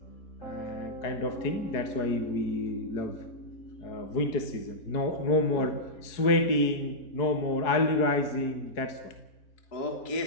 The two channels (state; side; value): late; right; 4.7 ms